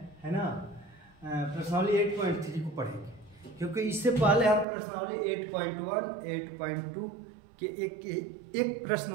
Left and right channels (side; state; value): left; drops out; at 4.7 s